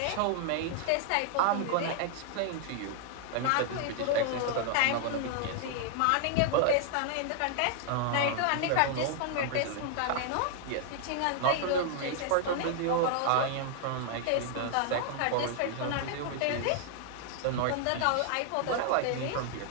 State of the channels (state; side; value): different; both; correlation 0.00